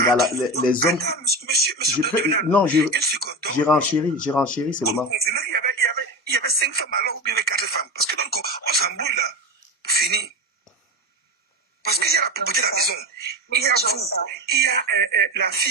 les hommes. Attends, monsieur Devenal, Non, une seconde. j'ai renchéri seulement. Il y avait 5 femmes alors ou bien il y avait 4 femmes. Parce que donc, on s'embrouille là. Pour finir. Parce qu'il y a la propriété de la maison. Il y a vous. Il y a la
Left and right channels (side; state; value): both; normal; correlation 0.23